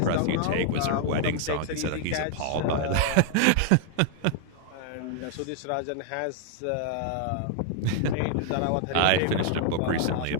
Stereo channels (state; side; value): different; both; correlation 0.00